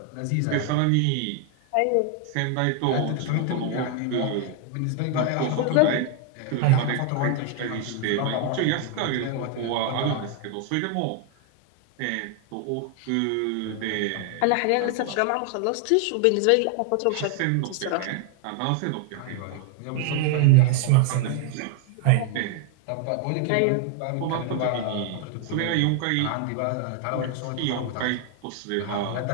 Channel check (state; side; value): different; both; correlation 0.00